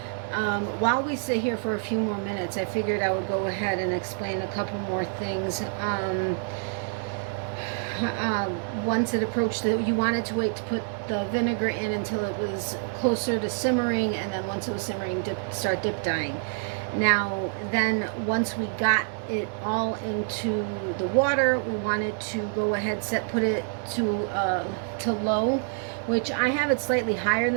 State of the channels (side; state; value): left; silent; 60 dB below the other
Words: While we sit here for a few more minutes, I figured I would go ahead and explain a couple more things. Once it approached you wanted to wait to put the vinegar in until it was closer to simmering, and then once it was simmering, start dip dyeing. Now, then once we got it all into the water, we wanted to go ahead, put it to low, which I have it slightly higher